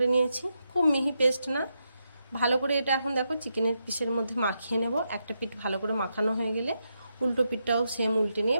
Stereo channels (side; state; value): both; inverted; correlation -0.83